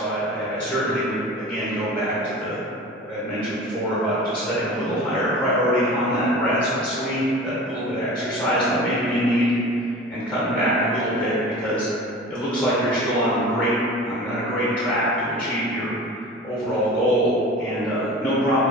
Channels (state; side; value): normal; both; correlation 0.37